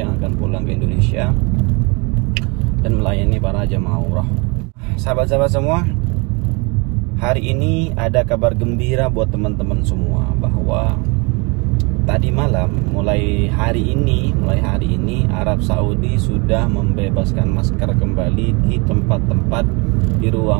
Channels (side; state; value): left; quieter; 29.8 dB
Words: akan pulang ke Indonesia dan melayani para jemaah umrah. Sahabat-sahabat semua, hari ini ada kabar gembira buat teman-teman semua, bahwa tadi malam mulai hari ini Arab Saudi sudah membebaskan masker kembali di tempat-tempat di